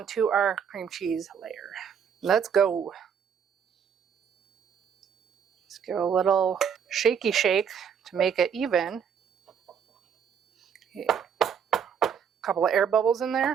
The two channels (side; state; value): left; quieter; 7.4 dB